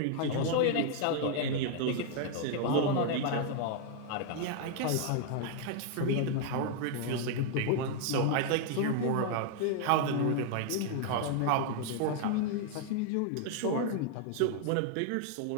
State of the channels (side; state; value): both; different; correlation 0.00